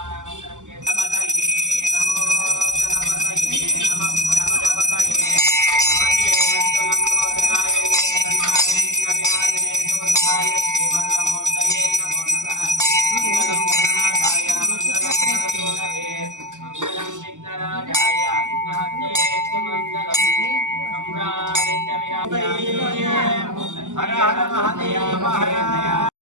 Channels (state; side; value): late; left; 0.86 ms